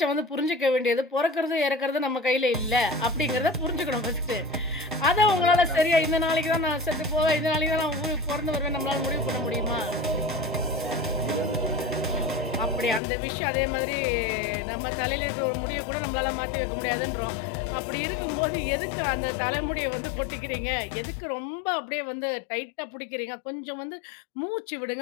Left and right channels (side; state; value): right; drops out; at 13.0 s